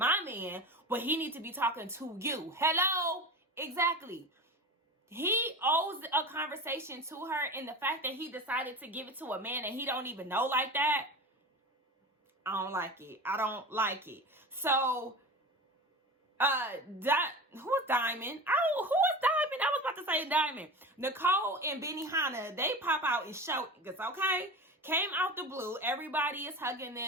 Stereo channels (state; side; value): normal; both; correlation 0.29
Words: man, but he need to be talking to you. Hello? Exactly. He owes a conversation to her, and the fact that he decided to give it to a man that he don't even know like that, I don't like it. I don't like it. So, who's Diamond? Oh, who is Diamond? I was about to say Diamond. Nicole and Benihana, they pop out and show it's okay. Came out the blue. Everybody is hugging